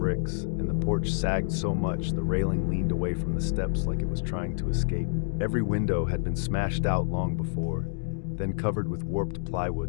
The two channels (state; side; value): silent; right; digital silence